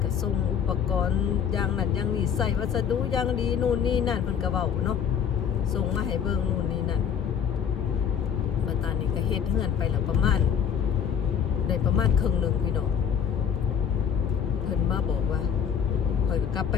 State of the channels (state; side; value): quieter; right; 7.9 dB